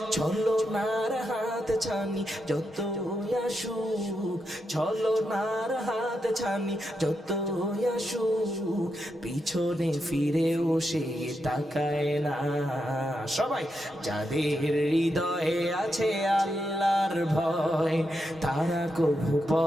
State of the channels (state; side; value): normal; both; correlation 0.85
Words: ছলনার হাত ছানি যত আসুক ছলনার হাত ছানি যত আসুক পিছনে ফিরেও সে তাকায় না। সবাই যাদের হৃদয়ে আছে আল্লাহর ভয় তারা কভু